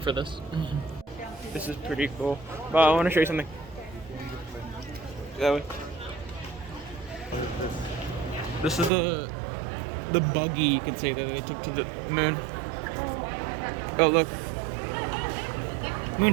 this. This is pretty cool. But I want to show you something. That way. This is the buggy, you could say, that they took to the moon. Oh, look. Moon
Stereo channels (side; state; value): left; drops out; at 8.9 s